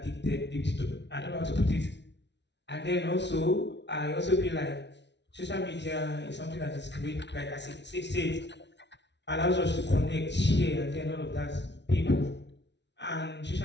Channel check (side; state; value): right; late; 0.51 ms